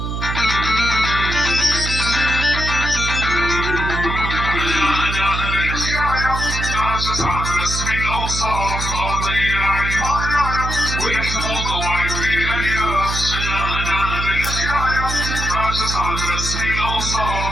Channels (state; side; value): noise; right; hum, 3 dB below the sound